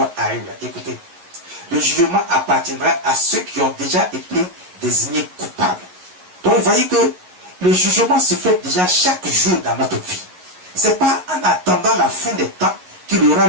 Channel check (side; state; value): left; late; 11 ms